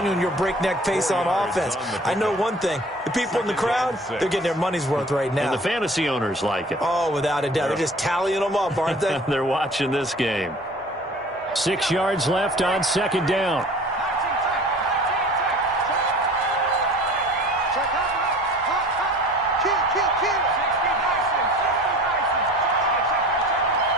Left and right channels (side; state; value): both; normal; correlation 0.45